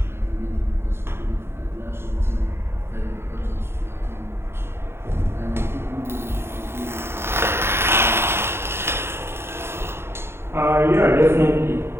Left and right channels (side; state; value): left; late; 0.12 ms